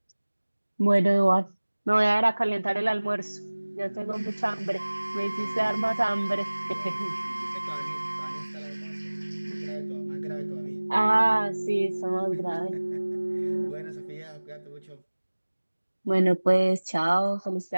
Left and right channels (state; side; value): inverted; both; correlation -1.00